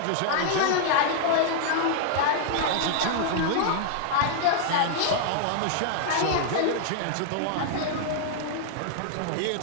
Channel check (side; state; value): both; different; correlation -0.01